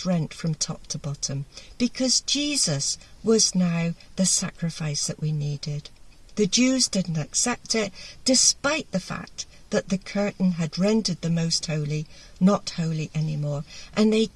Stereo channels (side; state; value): both; identical; correlation 1.00